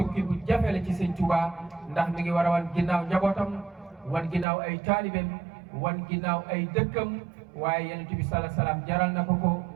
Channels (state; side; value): drops out; left; at 4.5 s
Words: bu jafe la ci Sëñ Tuubaa ndax mi ngi war a wan ginnaaw njabootam wan ginnaaw ay taalibeem wan ginnaaw ay dëkkam waaye Yonent bi sala salaam jaral na ko ko